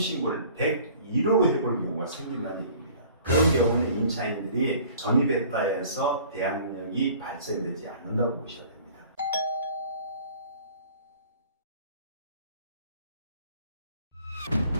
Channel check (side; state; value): both; inverted; correlation -0.50